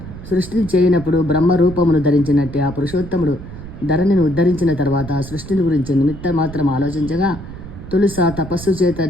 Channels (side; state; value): right; noise; rumble, 13 dB below the sound